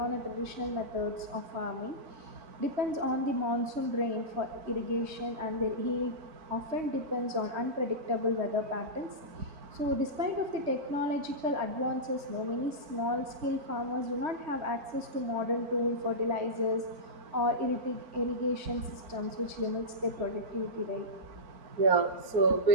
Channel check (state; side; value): late; left; 3.2 ms